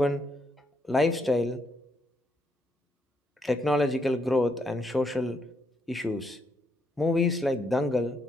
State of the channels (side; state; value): both; normal; correlation 0.76